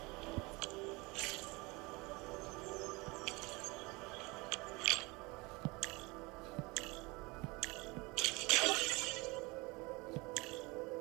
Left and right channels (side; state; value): left; quieter; 25.0 dB